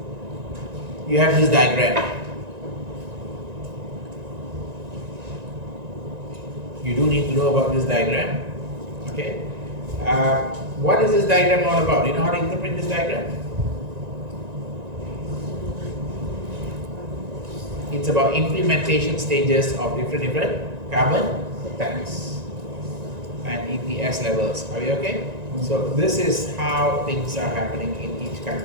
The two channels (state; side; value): late; left; 1.9 ms